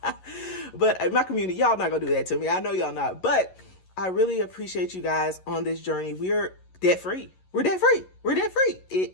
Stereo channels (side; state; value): right; late; 11 ms